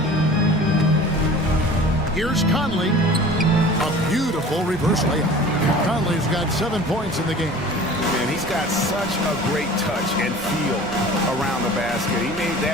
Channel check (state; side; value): noise; right; rumble, 17 dB below the sound